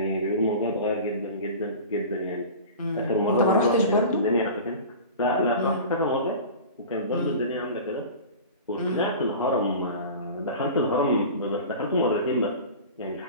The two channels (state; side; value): inverted; both; correlation -0.36